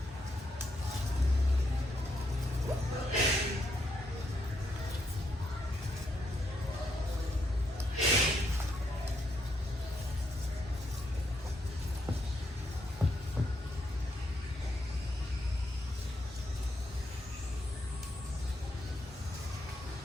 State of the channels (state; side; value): normal; both; correlation 0.78